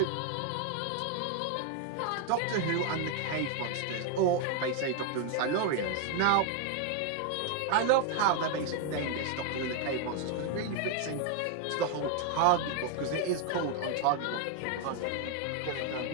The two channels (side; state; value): both; different; correlation 0.01